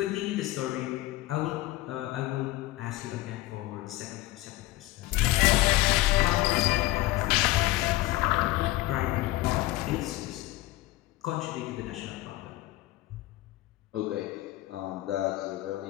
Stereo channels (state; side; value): quieter; right; 17.9 dB